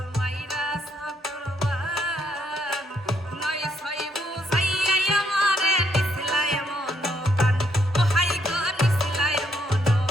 মাইরা সাকরবান, নয় ছয় বুঝাইয়াই আমারে নিছিলায় মনকান। ও হাই গো নিছিলায়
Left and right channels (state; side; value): normal; both; correlation 0.73